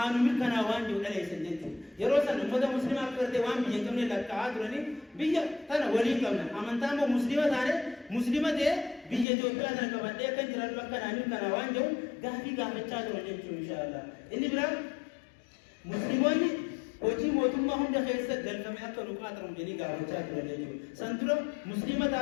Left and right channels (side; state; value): right; drops out; at 9.2 s